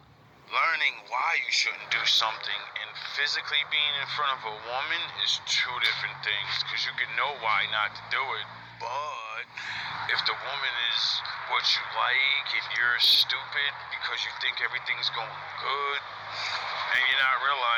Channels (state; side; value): identical; both; correlation 1.00